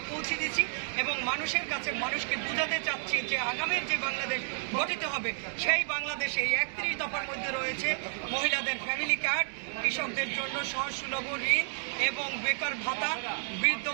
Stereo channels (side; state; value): left; silent; 57 dB below the other